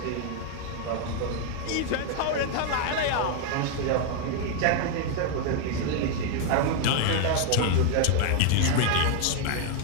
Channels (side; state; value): both; different; correlation 0.00